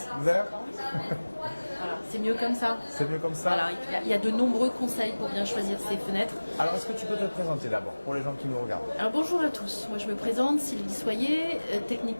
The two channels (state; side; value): inverted; both; correlation -1.00